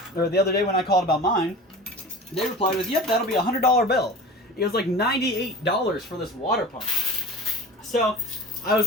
or the other day when I called about mine, they replied with, yep, that'll be a $100 bill. It was like $98 for this water pump. So I was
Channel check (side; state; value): both; normal; correlation 0.36